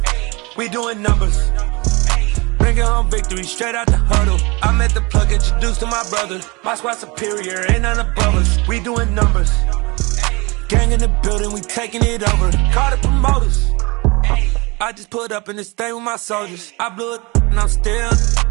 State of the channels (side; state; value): left; quieter; 26.4 dB